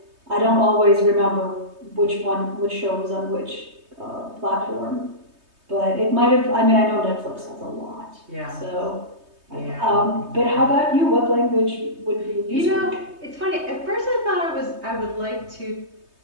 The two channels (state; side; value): late; left; 3.2 ms